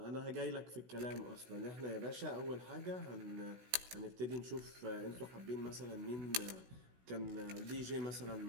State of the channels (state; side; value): late; left; 16 ms